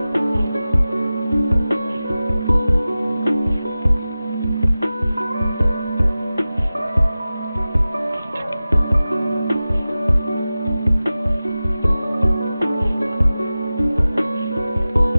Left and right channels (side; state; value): both; inverted; correlation -0.96